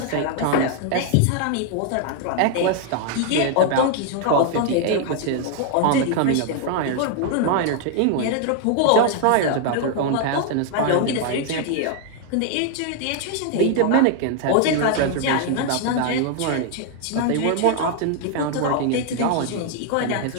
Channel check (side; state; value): both; different; correlation 0.00